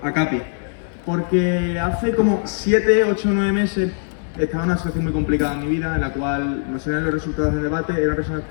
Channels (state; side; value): silent; right; 62 dB below the other